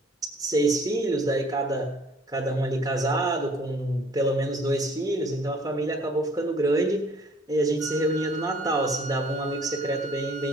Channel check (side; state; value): both; normal; correlation 0.56